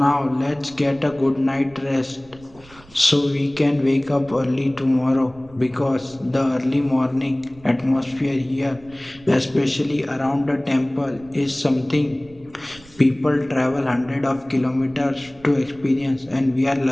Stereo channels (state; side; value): noise; right; rumble, 24 dB below the sound